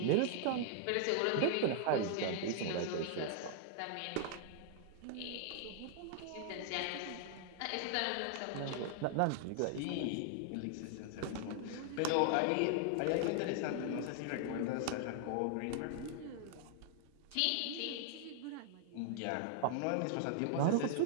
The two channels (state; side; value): different; both; correlation 0.00